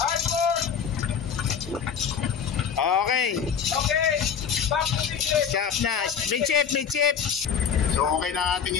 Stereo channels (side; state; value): right; quieter; 7.3 dB